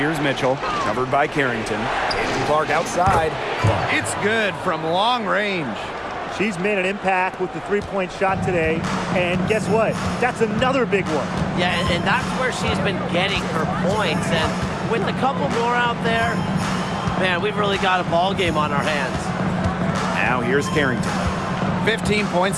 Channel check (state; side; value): identical; both; correlation 1.00